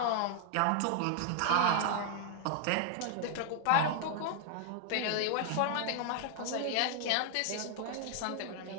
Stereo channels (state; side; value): different; both; correlation 0.00